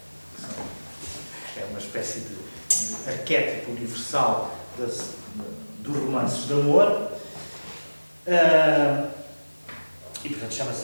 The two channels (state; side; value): inverted; both; correlation -1.00